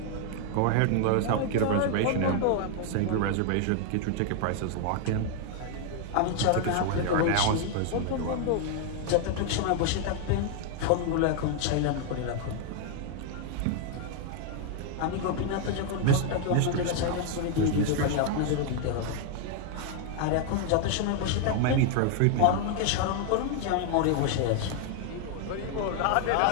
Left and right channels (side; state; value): both; different; correlation 0.00